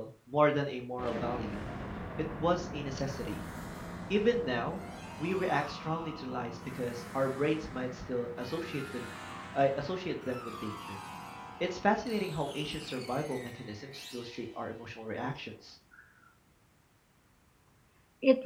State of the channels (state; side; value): identical; both; correlation 1.00